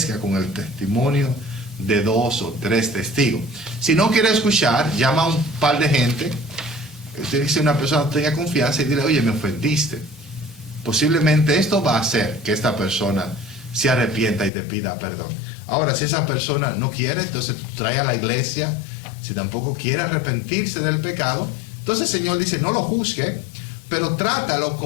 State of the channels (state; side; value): drops out; right; at 14.5 s